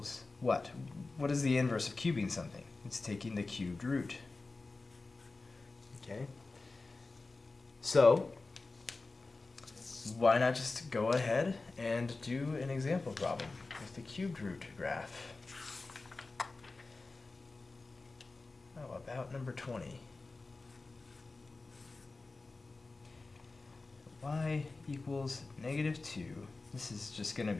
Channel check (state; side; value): quieter; right; 3.6 dB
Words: what? What is the inverse of cubing something? It's taking the cubed root. Okay? So why not just go ahead and do an example problem with the cubed root graph? How about number 20? Y equals -2. This is just going to